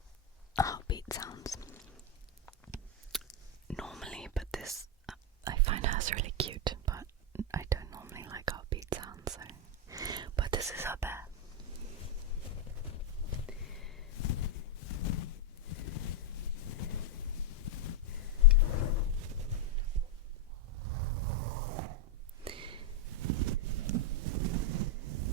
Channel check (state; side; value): normal; both; correlation 0.01